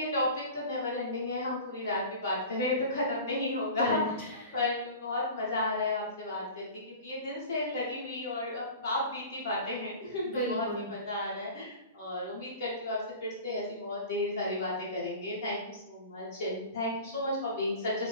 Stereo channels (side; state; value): both; inverted; correlation -0.38